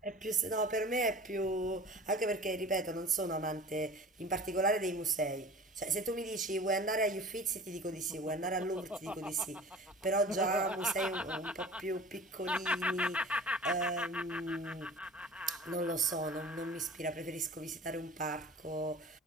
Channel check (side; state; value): both; normal; correlation 0.41